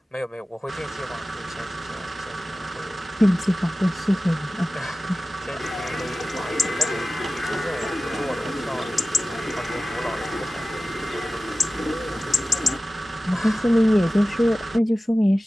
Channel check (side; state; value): both; normal; correlation 0.96